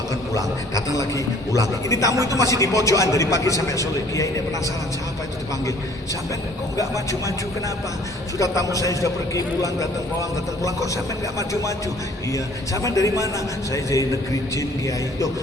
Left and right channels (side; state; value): both; normal; correlation 0.55